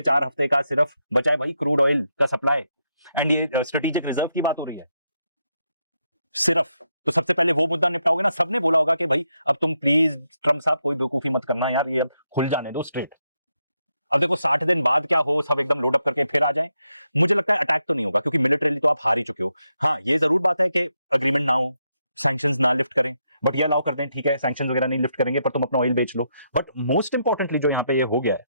4 हफ्ते का सिर्फ बचा है भाई क्रूड ऑयल का सप्लाई, एंड ये स्ट्रेटेजिक रिजर्व की बात हो रही है सिर्फ। तो सबसे पहले वो मुद्दा निपटाओगे ना। सबने बोला होगा कि भाई अब तुम प्लीज ट्रम्प साहब कोई बेवकूफी मत करना यार, ये अब खुल जाने दो स्ट्रेट। अब देखो 60 दिन बाद क्या हो, सब एकदम लोड अप करके फिर आ जाएं। मुझे लगता है अटैक तो नहीं होगा, क्योंकि मिलिटरीली तो आप हार ही चुके हो। हाँ, ये जरूर बात है कि अग्रीमेंट ना हो, सैंक्शंस ना लिफ्ट करें, बट ये अलाउ कर दें, ठीक है सैंक्शंस वगैरह नहीं लिफ्ट करेंगे, पर तुम अपना ऑयल बेच लो। बट मोस्ट इंपॉर्टेंटली जो यहाँ पे ये हो गया है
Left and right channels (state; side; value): inverted; both; correlation -0.81